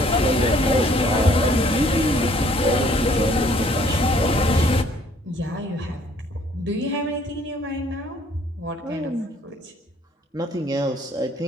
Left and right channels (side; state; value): both; normal; correlation 0.61